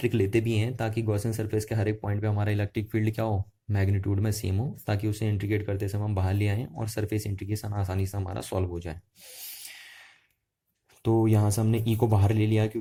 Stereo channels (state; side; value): identical; both; correlation 1.00